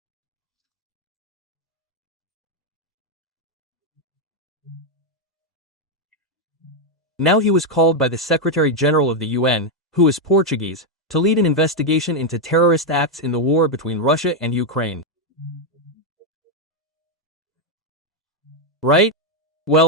Now he was called by the Secretary General of the UN, who is Portuguese, to lead an investigation into terrorist acts in the war between Russia and Ukraine. Right?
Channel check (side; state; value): both; normal; correlation 0.02